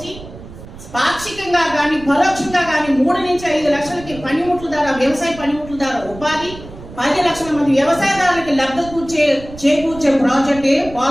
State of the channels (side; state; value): right; noise; rumble, 16 dB below the sound